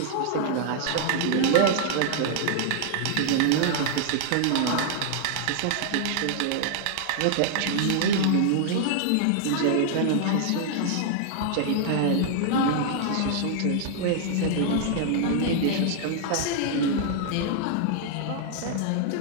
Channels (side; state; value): both; different; correlation -0.01